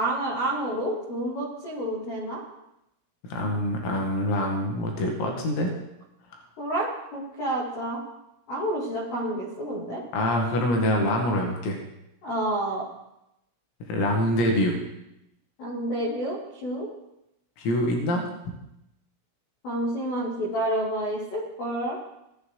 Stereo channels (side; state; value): right; late; 17 ms